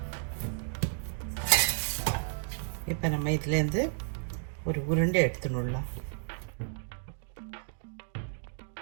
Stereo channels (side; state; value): left; silent; digital silence